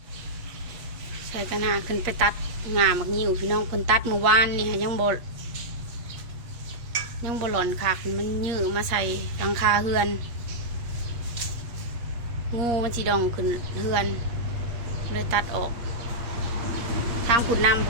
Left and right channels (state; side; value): late; left; 8.5 ms